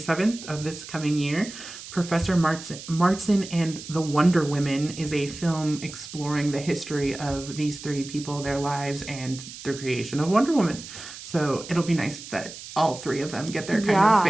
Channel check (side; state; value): right; noise; hiss, 13 dB below the sound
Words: of this coming year, Professor Martson and the Wonder Women is a film exploring the history of these three people, their lives, and their creation of Wonder Woman. So it'll be nice that all three of them get their kind of